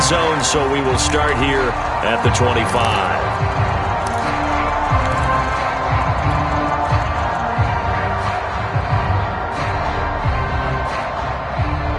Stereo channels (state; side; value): identical; both; correlation 1.00